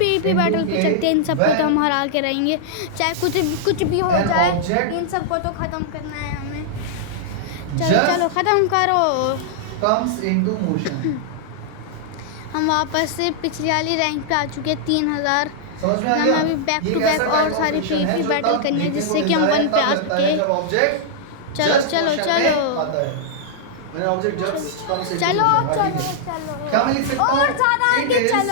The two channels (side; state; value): both; different; correlation -0.01